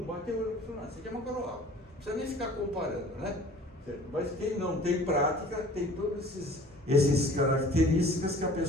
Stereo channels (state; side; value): normal; both; correlation 0.48